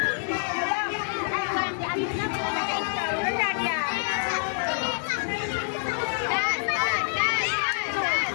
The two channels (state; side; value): silent; right; digital silence